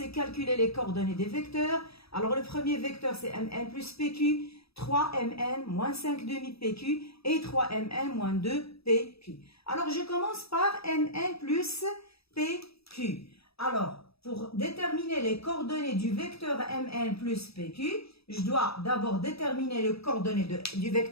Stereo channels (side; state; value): right; late; 0.77 ms